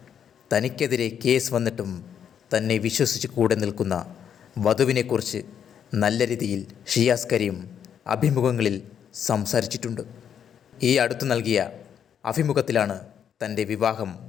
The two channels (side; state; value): right; quieter; 8.4 dB